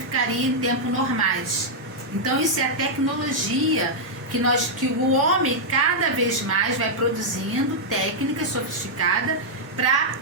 em tempos normais. Então isso é a tecnologia que o homem cada vez mais vai produzindo técnica sofisticada para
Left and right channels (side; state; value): left; late; 1.7 ms